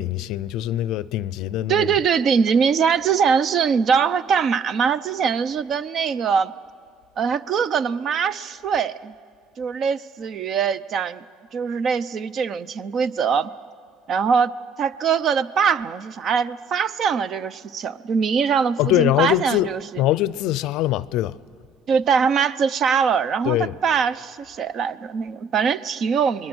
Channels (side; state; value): left; quieter; 3.2 dB